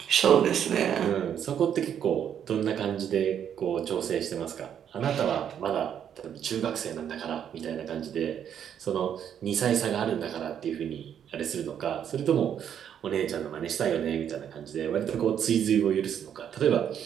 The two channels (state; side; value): quieter; left; 9.0 dB